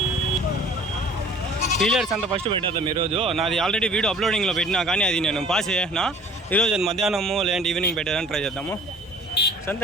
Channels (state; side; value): normal; both; correlation 0.49